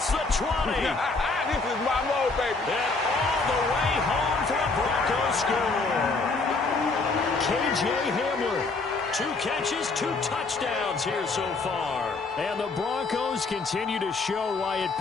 the 20. This is my mode, baby. And all the way home for a Broncos score. K.J. Hamler. 2 catches, 2 touchdowns here so far. And the Broncos continue to show why it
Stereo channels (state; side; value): quieter; right; 3.8 dB